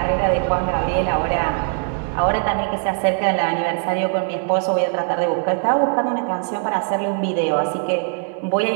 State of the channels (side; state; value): left; silent; 63 dB below the other